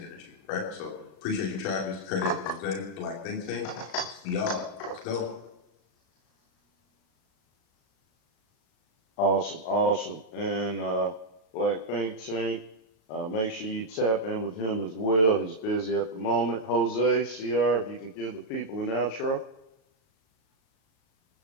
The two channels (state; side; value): late; right; 36 ms